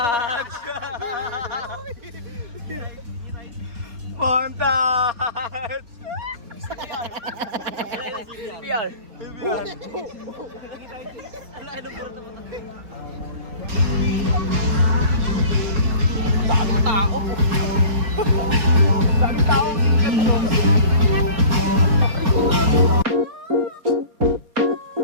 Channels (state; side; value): late; left; 4.2 ms